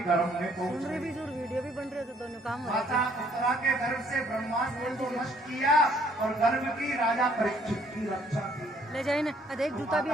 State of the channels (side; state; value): both; normal; correlation 0.63